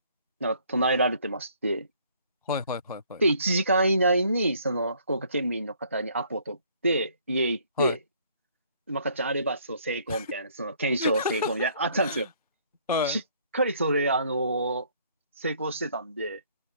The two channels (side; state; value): both; inverted; correlation -0.61